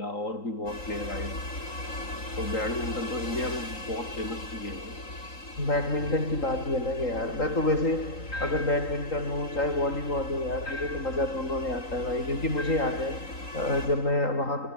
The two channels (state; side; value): late; right; 3.8 ms